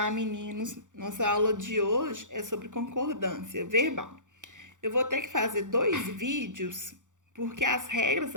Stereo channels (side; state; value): left; late; 0.86 ms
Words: meninos. Nossa aula de hoje é sobre concordância verbal. Eu vou ter que fazer 2 vídeos porque as regras